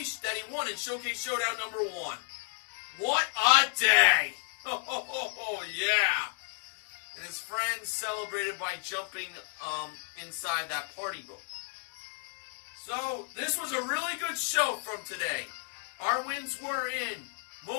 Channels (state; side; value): silent; right; 55 dB below the other